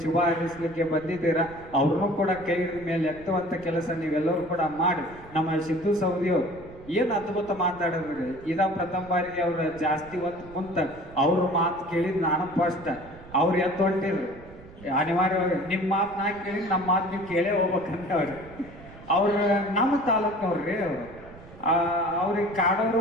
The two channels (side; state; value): right; noise; rumble, 19 dB below the sound